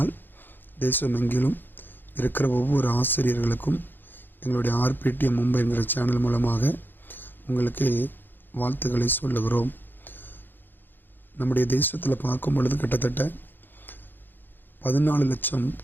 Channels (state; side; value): late; right; 0.094 ms